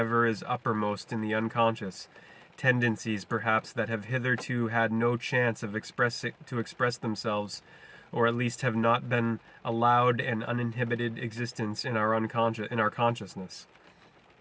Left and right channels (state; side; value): identical; both; correlation 1.00